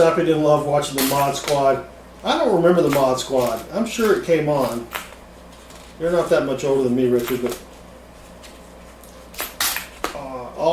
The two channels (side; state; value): both; identical; correlation 1.00